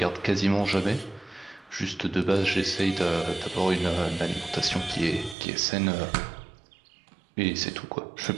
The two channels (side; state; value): left; drops out; at 5.4 s